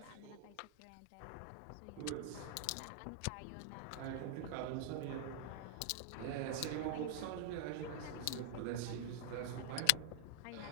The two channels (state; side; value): different; both; correlation 0.00